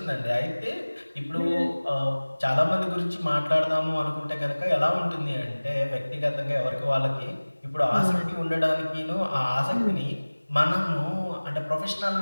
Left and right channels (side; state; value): both; inverted; correlation -1.00